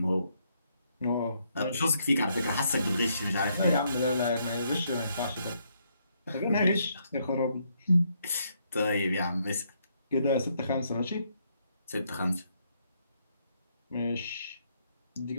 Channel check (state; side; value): inverted; both; correlation -0.73